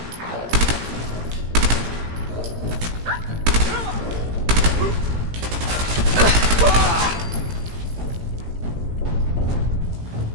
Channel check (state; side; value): late; left; 17 ms